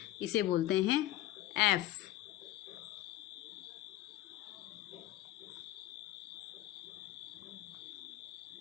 इसे बोलते हैं F।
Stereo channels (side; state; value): right; quieter; 14.6 dB